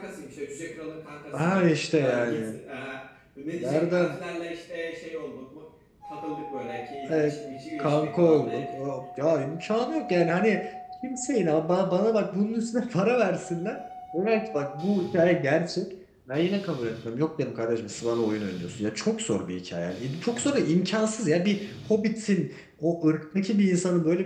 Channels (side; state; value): both; identical; correlation 1.00